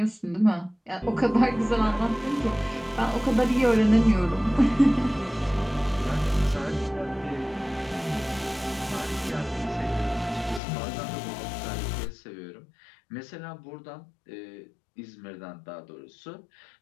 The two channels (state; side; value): drops out; right; at 10.6 s